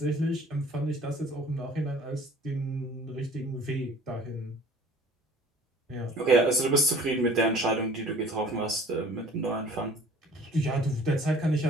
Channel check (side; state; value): both; normal; correlation 0.50